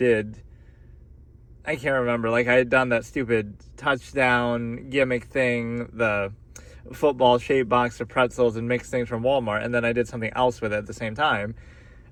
can't remember, like I had done that stupid touchdown gimmick thing, the football-shaped box of pretzels and mixed things from Walmart, and then I did something else with it at the same time,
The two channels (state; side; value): identical; both; correlation 1.00